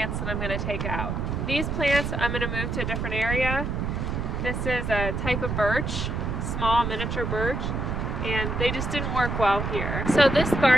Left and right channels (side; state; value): right; noise; rumble, 2 dB below the sound